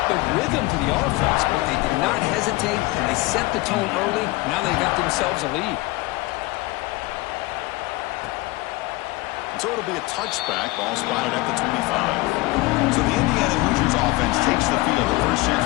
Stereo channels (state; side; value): quieter; right; 21.4 dB